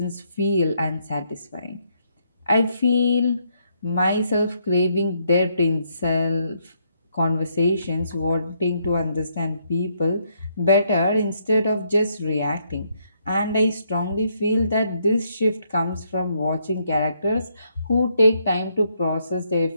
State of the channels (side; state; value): both; inverted; correlation -0.74